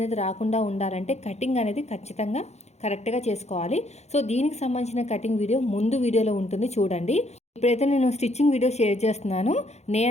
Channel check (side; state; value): right; late; 0.32 ms